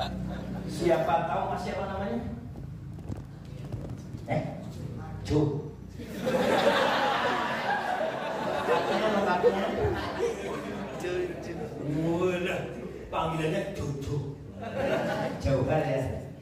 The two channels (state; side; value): identical; both; correlation 1.00